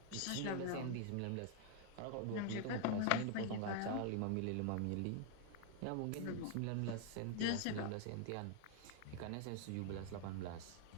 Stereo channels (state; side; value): different; both; correlation 0.00